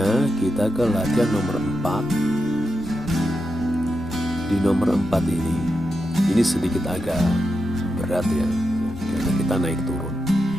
kita ke latihan nomor 4. Di nomor 4 ini sedikit agak berat ya, karena kita naik turun.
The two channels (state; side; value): normal; both; correlation 0.87